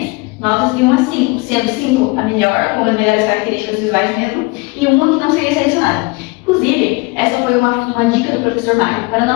notas de 1 a 5, sendo 5 a melhor, com as melhores características visuais mesmo, e uma que não seria selecionada. Inclusive, essa foi uma dica do professor Mário para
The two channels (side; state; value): right; quieter; 26.2 dB